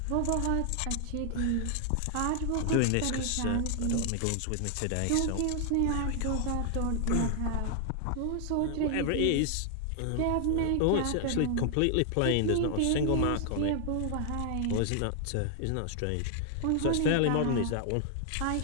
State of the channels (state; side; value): different; both; correlation 0.00